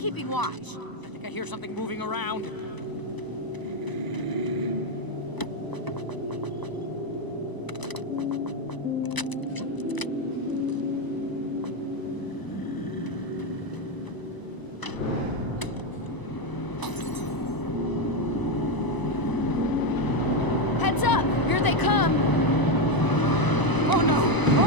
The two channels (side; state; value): right; late; 1.0 ms